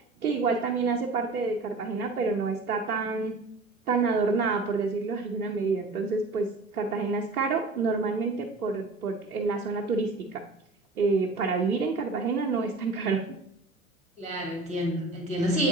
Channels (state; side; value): quieter; left; 3.5 dB